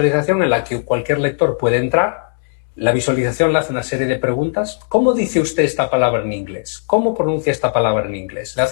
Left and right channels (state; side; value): silent; right; digital silence